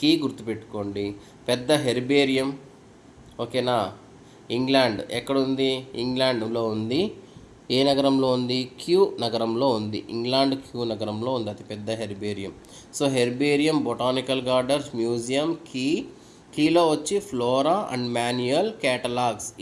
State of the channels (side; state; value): both; identical; correlation 1.00